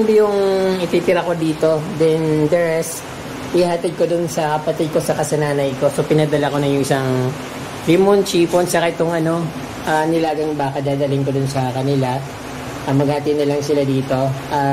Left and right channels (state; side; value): identical; both; correlation 1.00